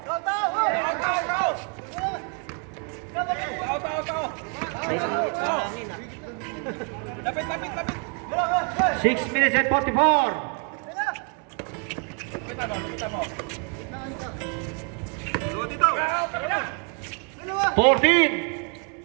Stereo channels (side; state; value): left; quieter; 38.2 dB